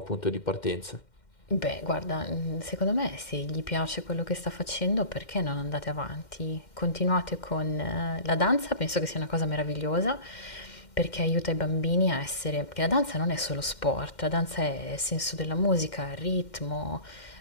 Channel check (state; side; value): late; right; 2.1 ms